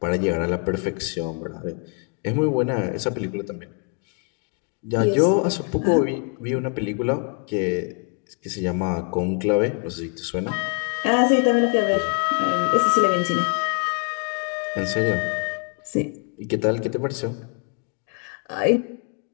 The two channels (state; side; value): quieter; right; 37.9 dB